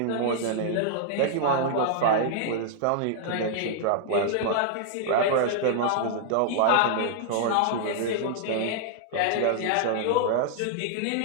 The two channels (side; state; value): both; different; correlation -0.01